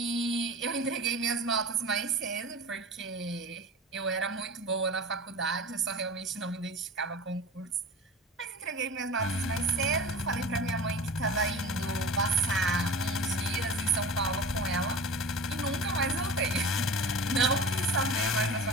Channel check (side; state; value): both; normal; correlation 0.35